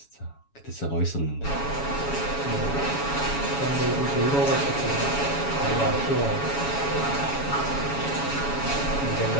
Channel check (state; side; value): late; right; 7.1 ms